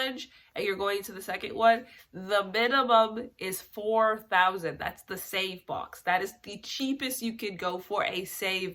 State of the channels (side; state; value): both; identical; correlation 1.00